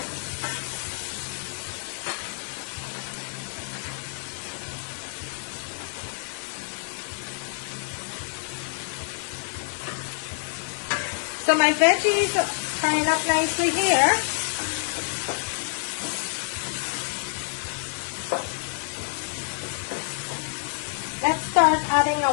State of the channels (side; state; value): right; silent; digital silence